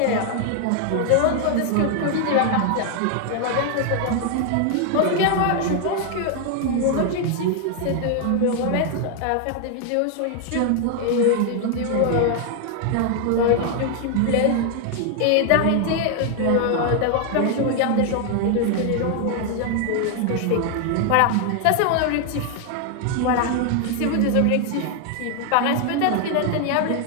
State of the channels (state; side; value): different; both; correlation 0.00